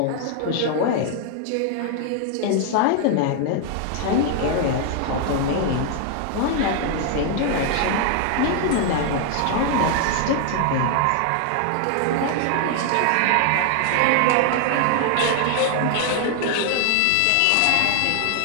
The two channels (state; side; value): different; both; correlation 0.00